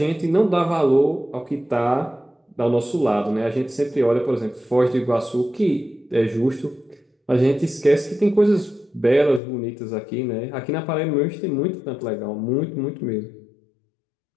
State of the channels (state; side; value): drops out; right; at 9.4 s